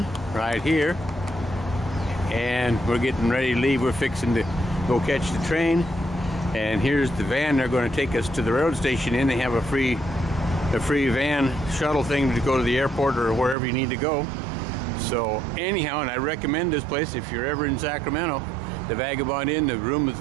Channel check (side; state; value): left; drops out; at 13.6 s